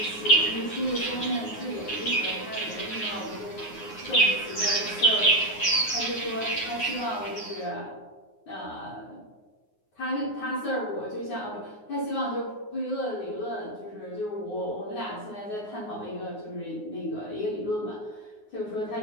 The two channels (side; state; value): right; late; 9.6 ms